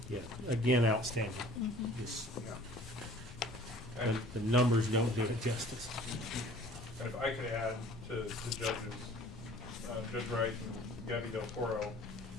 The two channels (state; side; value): noise; left; rumble, 16 dB below the sound